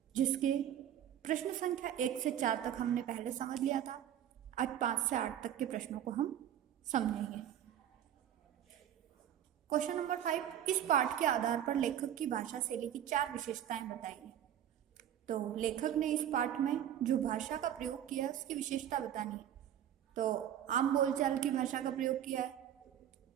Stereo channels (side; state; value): left; quieter; 10.5 dB